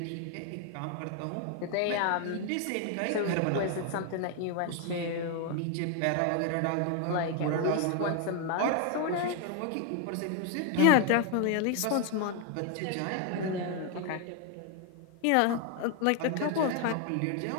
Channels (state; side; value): different; both; correlation 0.01